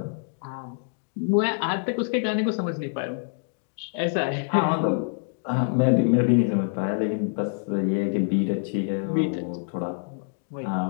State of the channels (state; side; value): silent; right; digital silence